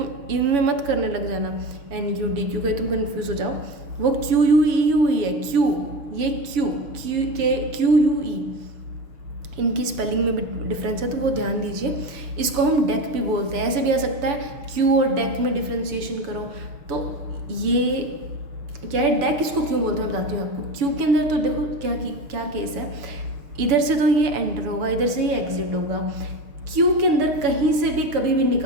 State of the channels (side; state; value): left; late; 7.0 ms